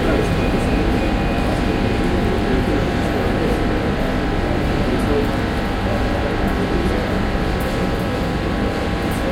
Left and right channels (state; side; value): identical; both; correlation 1.00